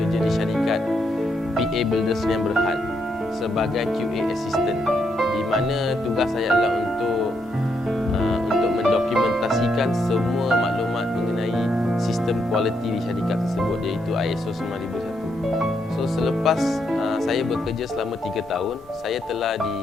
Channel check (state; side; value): normal; both; correlation 0.78